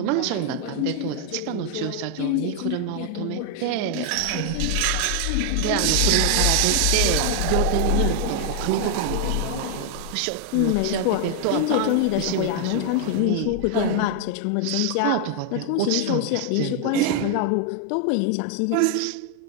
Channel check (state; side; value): different; both; correlation 0.00